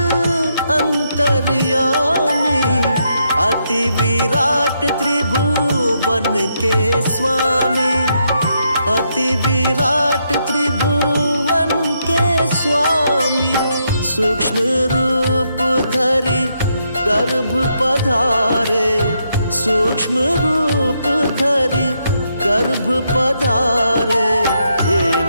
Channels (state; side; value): inverted; both; correlation -0.78